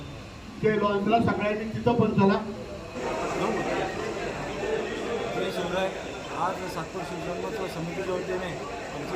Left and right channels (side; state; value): both; identical; correlation 1.00